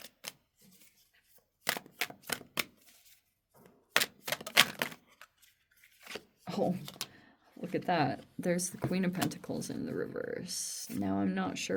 Oh, look at that. There's the Queen of Pentacles in the reverse. Now I'm not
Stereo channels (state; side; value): identical; both; correlation 1.00